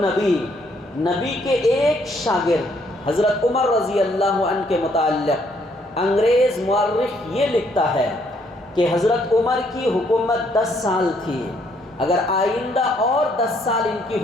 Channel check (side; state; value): both; normal; correlation 0.69